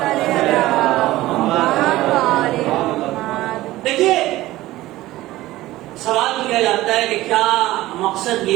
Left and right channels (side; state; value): left; quieter; 16.8 dB